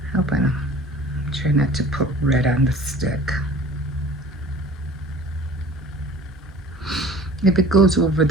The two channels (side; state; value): both; normal; correlation 0.45